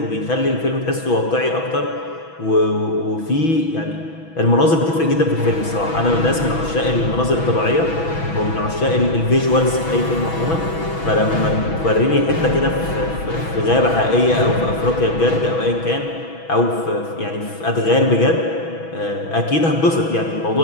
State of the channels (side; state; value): right; late; 6.1 ms